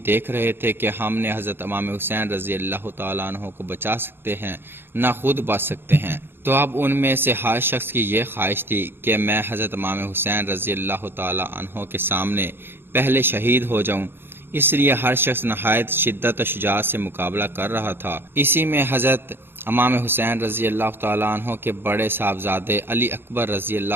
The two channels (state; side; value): late; left; 0.10 ms